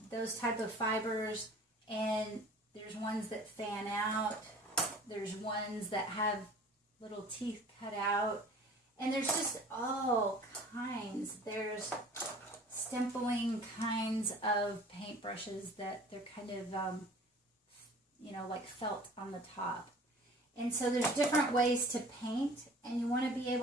those type of fibers. And there's ones that fan out. There's ones that have little teeth cut out. And there's just all kinds. There's stempling kinds of paintbrushes that they're kind of, you know, like felt on the top. And so there's different ways to paint, and you want to be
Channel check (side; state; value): both; normal; correlation 0.46